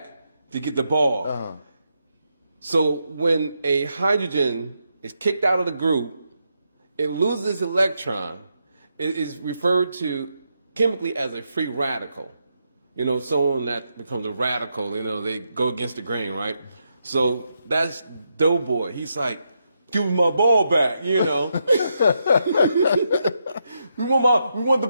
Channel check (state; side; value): inverted; both; correlation -0.82